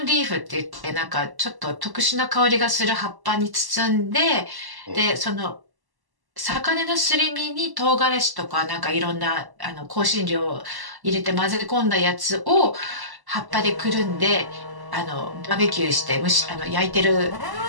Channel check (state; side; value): late; left; 1.1 ms